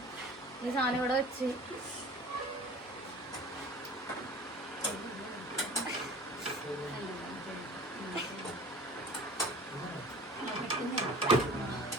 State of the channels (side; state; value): both; normal; correlation 0.44